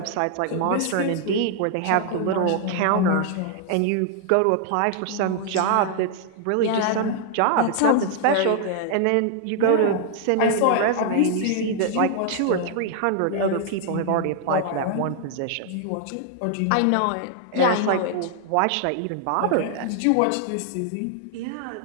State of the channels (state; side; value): different; both; correlation 0.00